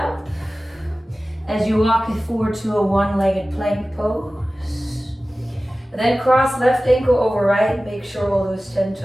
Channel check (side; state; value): both; normal; correlation 0.96